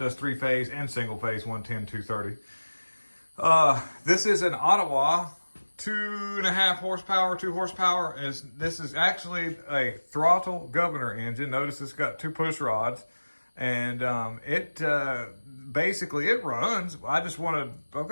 3-phase and single phase 110 230. This is an Ottawa. 2.5 horsepower, 2 horsepower. This is actually a throttle governor engine. Notice it's got 2 push rods, and it runs. I've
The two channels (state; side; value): inverted; both; correlation -1.00